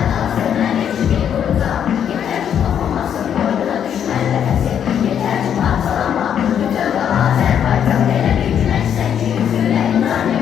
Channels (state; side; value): quieter; right; 8.9 dB